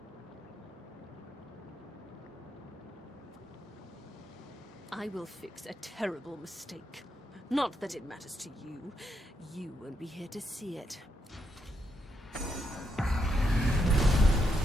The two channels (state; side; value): normal; both; correlation 0.80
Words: I will fix a terrible mistake. Not that it matters to you. You won't be here to see it.